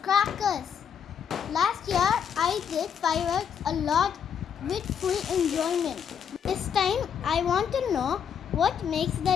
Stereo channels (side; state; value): right; quieter; 7.7 dB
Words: crackers. Last year I did fireworks a lot with full enjoyment. This time I want to know what makes the